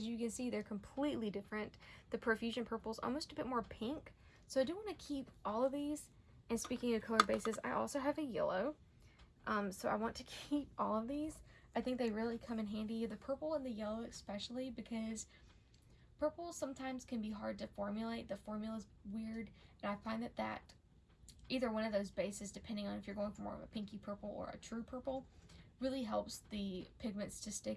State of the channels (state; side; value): identical; both; correlation 1.00